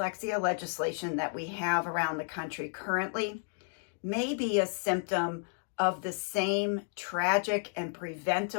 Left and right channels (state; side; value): silent; right; 56 dB below the other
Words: legislation that we have around the country currently may be a symptom of the same tragic and